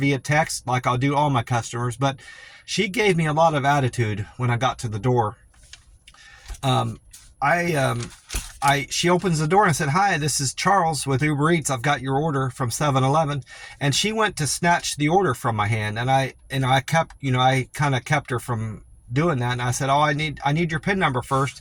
text like I'll do all my customers, but she gave me a lot of attitude when I got to the door. She opens the door and I said, "Hi, this is Charles with Uber Eats. I've got your order from 7-Eleven." And she went to snatch the order from my hand, and I kind of kept her from doing that. And I said, "Oh, I need your PIN number first."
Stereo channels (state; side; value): identical; both; correlation 1.00